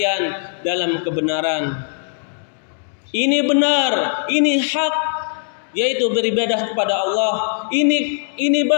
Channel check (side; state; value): right; silent; 65 dB below the other